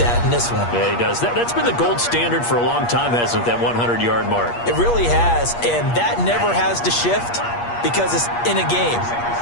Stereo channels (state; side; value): late; right; 8.5 ms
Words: in this one. Yeah, he does. That's been the gold standard for a long time, hasn't it, that 100-yard mark? It really has, and that never has to shift because it's in a game.